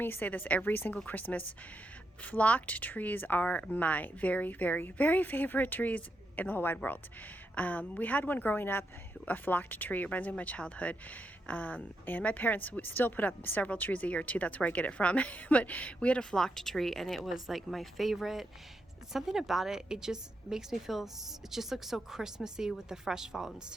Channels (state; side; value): normal; both; correlation 0.83